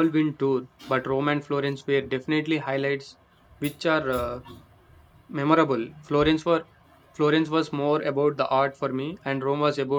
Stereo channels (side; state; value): both; identical; correlation 1.00